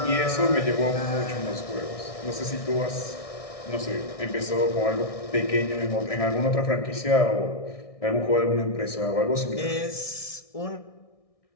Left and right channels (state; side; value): late; right; 1.6 ms